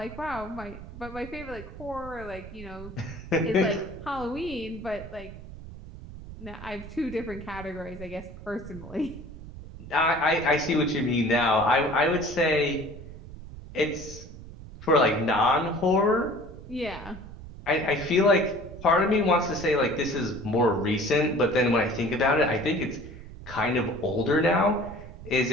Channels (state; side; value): noise; right; rumble, 14 dB below the sound